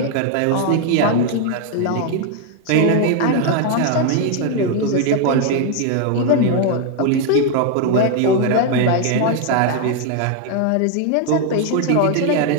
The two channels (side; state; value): both; different; correlation 0.01